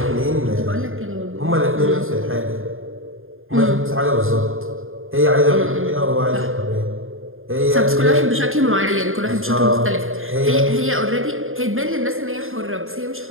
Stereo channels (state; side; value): late; left; 0.60 ms